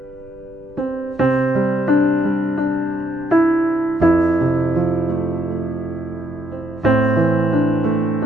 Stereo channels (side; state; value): right; noise; rumble, 25 dB below the sound